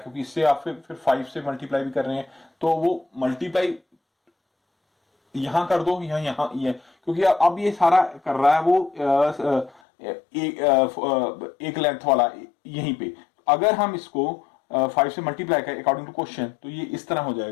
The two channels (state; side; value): drops out; right; at 9.8 s